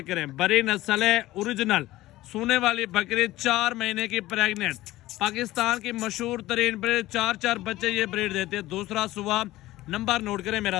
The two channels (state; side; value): quieter; right; 16.9 dB